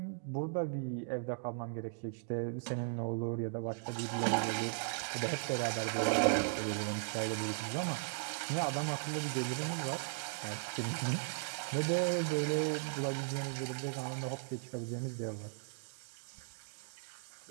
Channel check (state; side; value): silent; left; digital silence